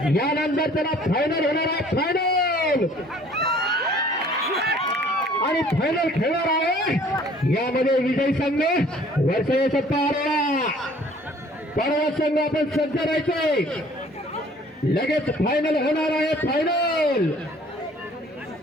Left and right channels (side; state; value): both; normal; correlation 0.54